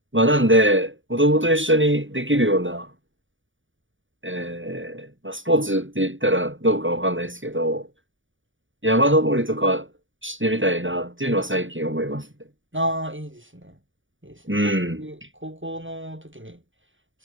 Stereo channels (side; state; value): left; late; 0.56 ms